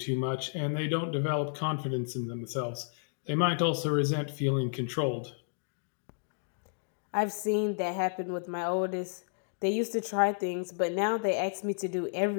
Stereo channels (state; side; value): silent; right; digital silence